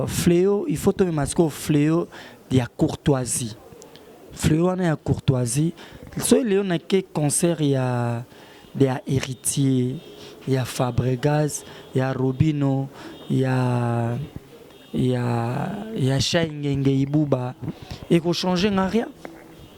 Fléau, il faut tomber masco fléau de la courtoisie. Fléau na ya courtoisie. So Léo na ke concert ya héritier, ya Fabregas, ya Robino, ya Shaingenge Ibuba et qu'on change rien.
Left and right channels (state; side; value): identical; both; correlation 1.00